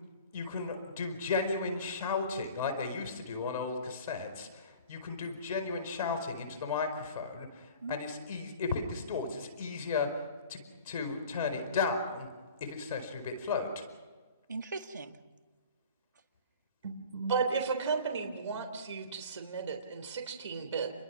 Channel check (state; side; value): inverted; both; correlation -0.44